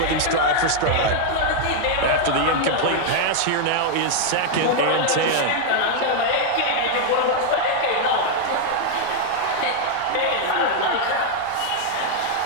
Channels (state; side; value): different; both; correlation 0.00